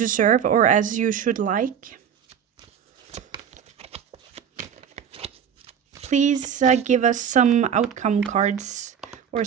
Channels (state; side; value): quieter; left; 8.1 dB